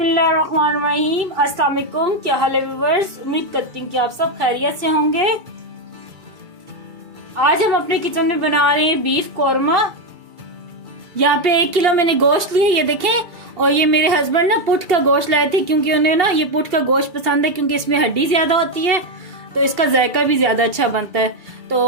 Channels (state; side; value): late; left; 2.3 ms